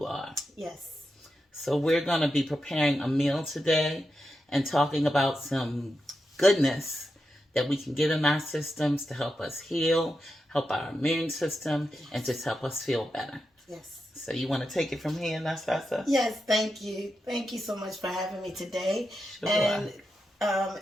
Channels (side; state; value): both; normal; correlation 0.88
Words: are. Yes. So we're going to be preparing a meal today and talking about some goodness that we can get in our systems to help us heal, help our immune system, and just help us feel better. Yes. So you want to take it from here, Narcessa? Yes, thank you. Thank you so much for having me today. Sure. And